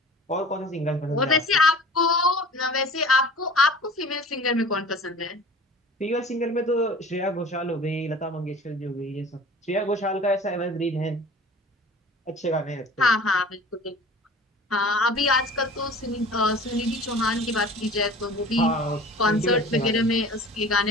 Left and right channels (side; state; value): both; normal; correlation 0.43